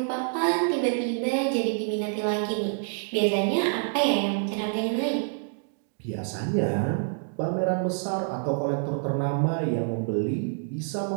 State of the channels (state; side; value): silent; left; digital silence